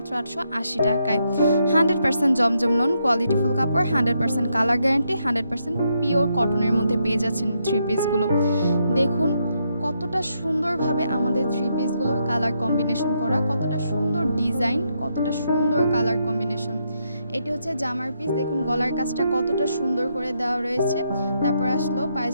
880 টাকায়। 100% জমজম লোন, কোয়ালিটিফুল কাপড়, 100% কালার গ্যারান্টি, 100% পিওর কটনের মধ্যে পেয়ে যাচ্ছেন থ্রি পিসগুলো। দেখুন কতটা সুন্দরভাবে আমাদের থ্রি পিসগুলোর কালার কম্বিনেশন করা, কতটা সুন্দর ডিজাইন, কতটা সুন্দর কালার কম্বিনেশন। এটি হচ্ছে জামার পিস, দেখুন গলার কাজটা কতটা সুন্দর করে দেওয়া রয়েছে। তারপর আসলো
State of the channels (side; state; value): both; inverted; correlation -0.79